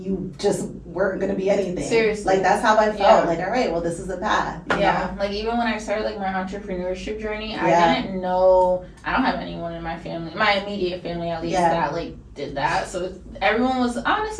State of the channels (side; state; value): both; identical; correlation 1.00